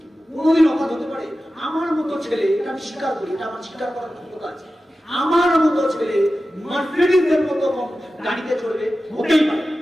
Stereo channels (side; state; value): both; normal; correlation 0.94